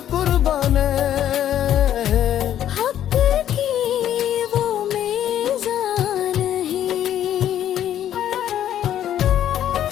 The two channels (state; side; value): quieter; right; 11.0 dB